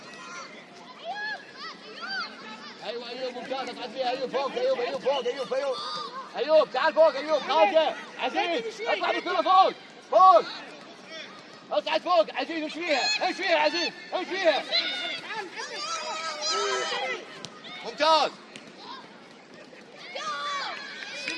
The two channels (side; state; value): both; identical; correlation 1.00